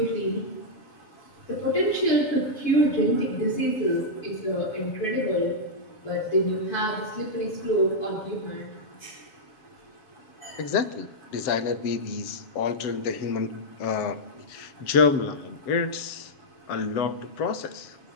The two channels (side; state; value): right; late; 7.3 ms